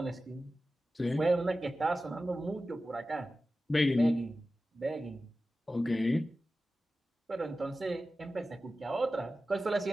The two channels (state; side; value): normal; both; correlation 0.94